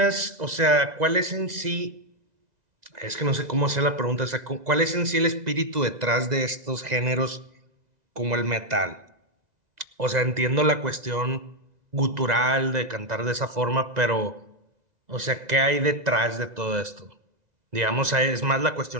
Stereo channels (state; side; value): late; left; 2.0 ms